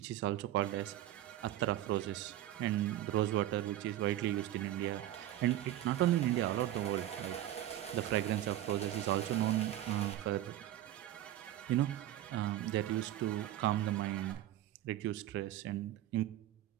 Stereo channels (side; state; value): left; quieter; 13.4 dB